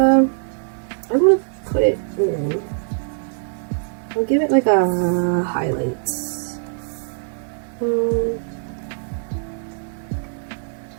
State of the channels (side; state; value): left; silent; 64 dB below the other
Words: gonna put it in. I'll give it like a highlights.